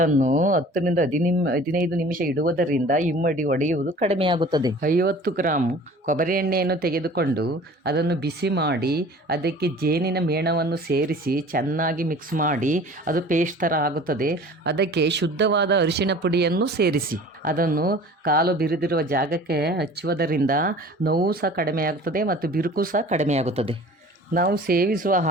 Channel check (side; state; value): both; normal; correlation 0.45